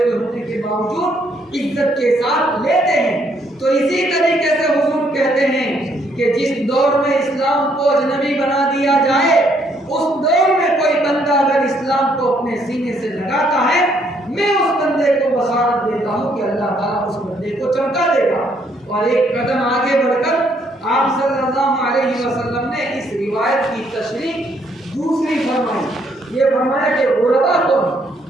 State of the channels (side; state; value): both; normal; correlation 0.69